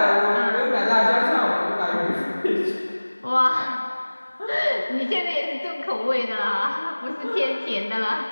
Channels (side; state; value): both; inverted; correlation -1.00